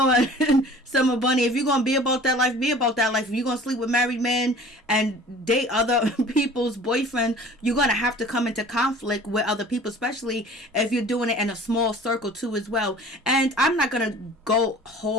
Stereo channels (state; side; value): normal; both; correlation 0.46